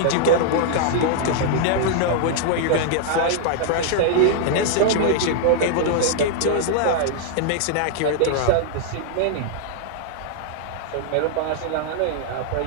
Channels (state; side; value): different; both; correlation -0.01